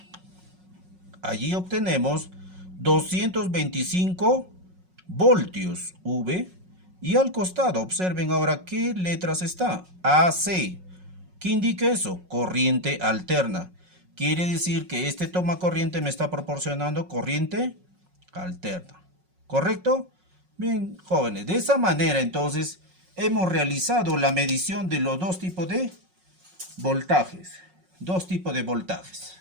Allí obtenemos 225 voltios V. Y al costado, observen ahora qué letras está. AC. ¿Qué indica eso? Corriente alterna. Quiere decir que este toma corriente me está proporcionando corriente alterna. ¿Correcto? Bien, jóvenes, de esa manera entonces hemos realizado la medición de los dos tipos de voltajes. Dos tipos de voltajes.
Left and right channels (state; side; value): late; left; 5.5 ms